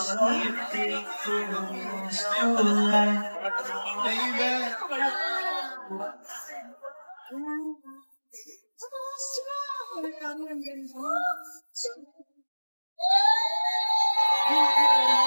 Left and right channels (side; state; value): both; inverted; correlation -1.00